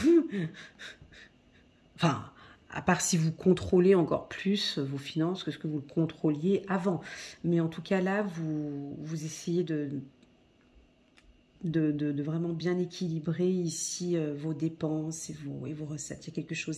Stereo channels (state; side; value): identical; both; correlation 1.00